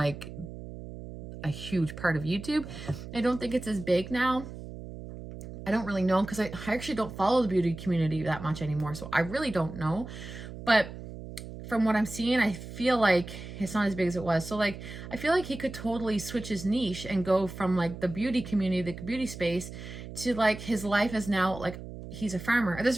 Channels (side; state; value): right; noise; hum, 11 dB below the sound